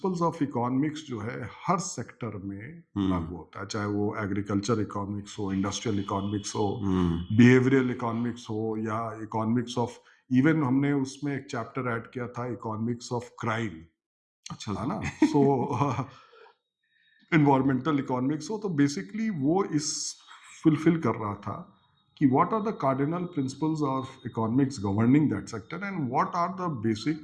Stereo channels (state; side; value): identical; both; correlation 1.00